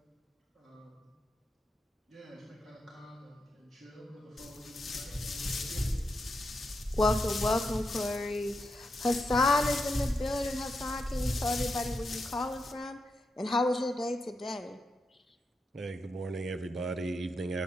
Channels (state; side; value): normal; both; correlation 0.85